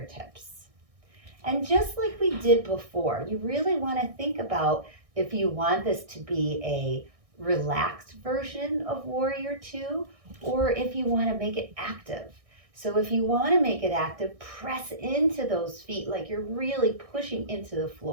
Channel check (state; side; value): late; left; 1.6 ms